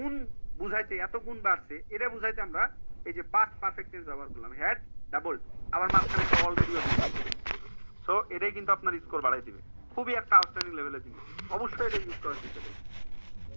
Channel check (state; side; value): inverted; both; correlation -1.00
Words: বুঝাইতে, এত গুণ বাড়ছে এটা বুঝাইতে আমরা এই যে পাস্ট পারফেক্ট টেন্স ব্যবহার করলাম, হ্যাড ডাবলড, আবার মাঝখানে একটা অলরেডি। সো এটাই কিন্তু আপনার স্কোর বাড়াই দিবে, খুবই একটা আউটস্ট্যান্ডিং লেভেলের জিনিস, অবশ্যই এটা ইউজ করার চেষ্টা করবেন